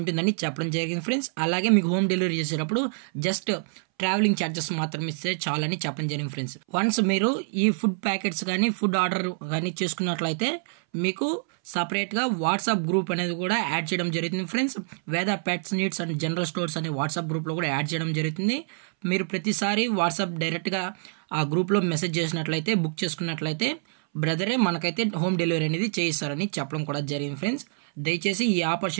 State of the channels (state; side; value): silent; left; 61 dB below the other